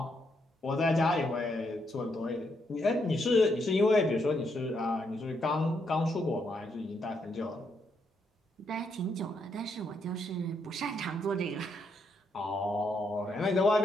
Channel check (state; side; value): normal; both; correlation 0.77